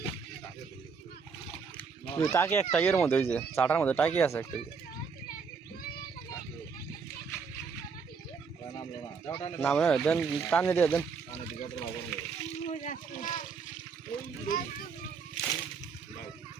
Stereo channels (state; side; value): quieter; left; 5.5 dB